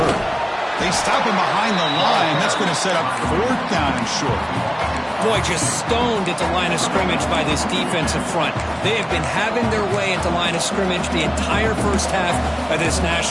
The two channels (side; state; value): both; identical; correlation 1.00